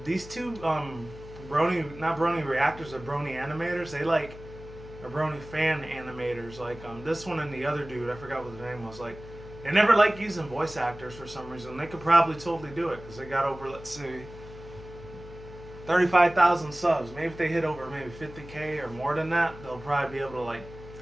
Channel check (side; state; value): left; noise; hum, 16 dB below the sound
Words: these two not Brony reactors, are Brony animators. They like are Brony fan animators. Like this one and the other dude, I forgot what the name was. Like they never like using voice actors for some reason. They could probably totally do it, because they got over, let's see, 35,000 subs. Maybe if they hit over maybe 50K or more than that, they'll probably be able to like